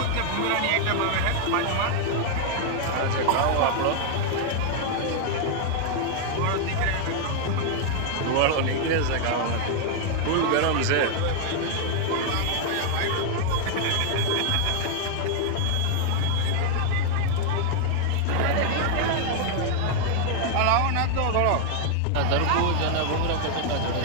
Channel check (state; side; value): different; both; correlation 0.00